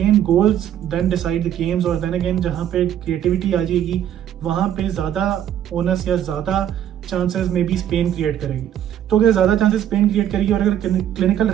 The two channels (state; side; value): quieter; left; 10.5 dB